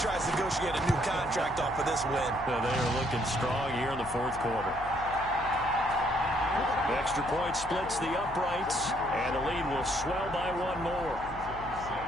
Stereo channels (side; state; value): left; noise; hum, 14 dB below the sound